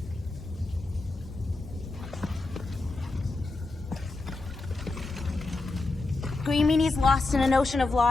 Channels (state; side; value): quieter; right; 3.3 dB